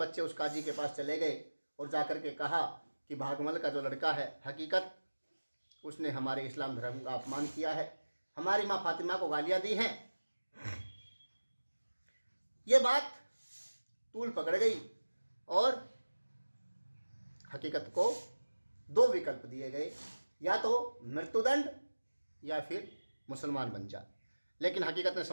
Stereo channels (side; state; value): both; inverted; correlation -1.00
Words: उस काजी के पास चले गए और जाकर के कहा कि भागमल का जो लड़का है हकीकत, उसने हमारे इस्लाम धर्म का अपमान किया है, हमारी माँ फातिमा को गालियाँ दी हैं। ये बात तूल पकड़ गई और हकीकत को 2 विकल्प दिए गए, या तो मृत्युदंड या फिर मुसलमान बन जा। लेकिन हकीकत ने